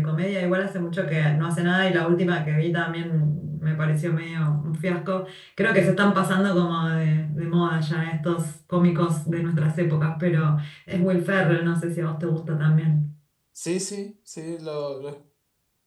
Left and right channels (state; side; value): identical; both; correlation 1.00